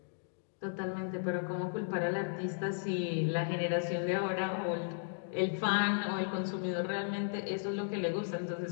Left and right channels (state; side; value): silent; right; digital silence